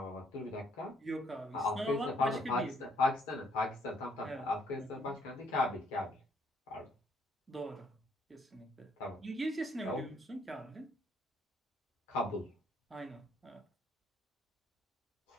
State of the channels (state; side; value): normal; both; correlation 0.68